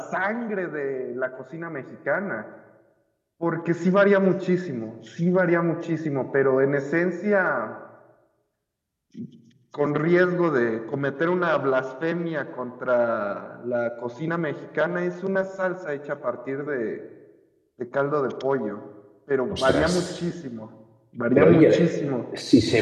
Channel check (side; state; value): both; identical; correlation 1.00